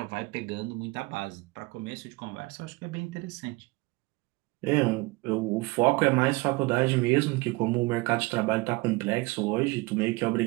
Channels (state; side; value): quieter; left; 23.7 dB